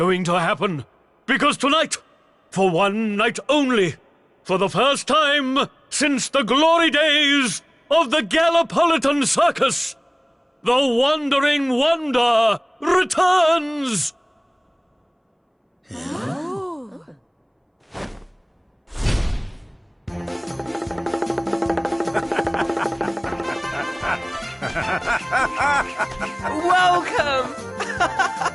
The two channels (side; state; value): both; identical; correlation 1.00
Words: to happen. Because tonight, for one night only, for the first time since the glory days of the Gallipolitan Circus, the Wandering Wonder returns! Welcome!